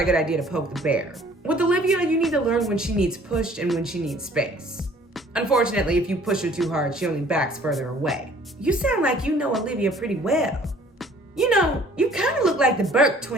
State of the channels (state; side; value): normal; both; correlation 0.55